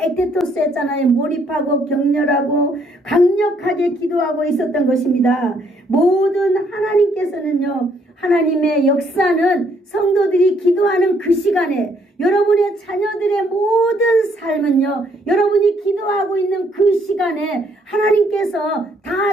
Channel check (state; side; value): normal; both; correlation 0.68